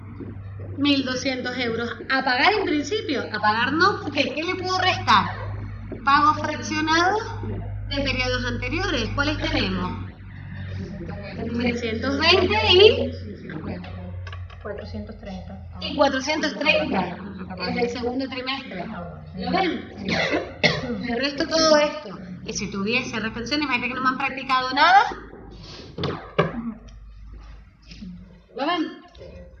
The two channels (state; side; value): identical; both; correlation 1.00